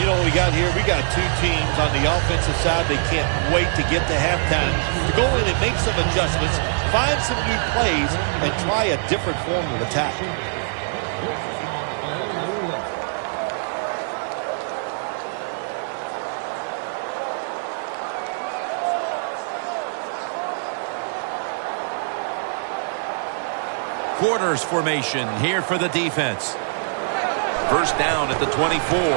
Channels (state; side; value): silent; left; digital silence